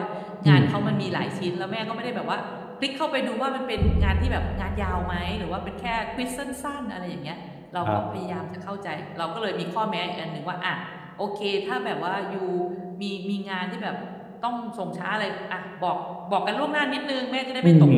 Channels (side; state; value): both; identical; correlation 1.00